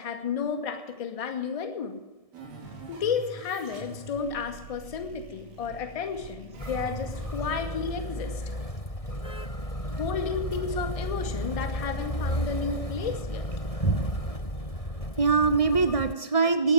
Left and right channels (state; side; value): late; right; 1.6 ms